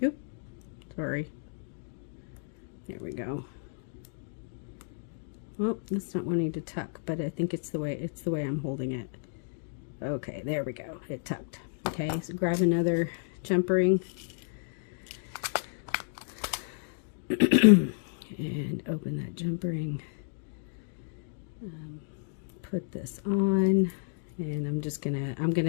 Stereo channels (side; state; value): right; silent; digital silence